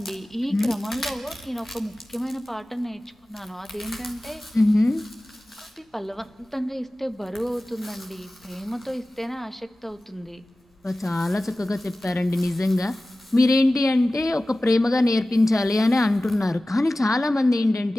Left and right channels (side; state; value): both; normal; correlation 0.96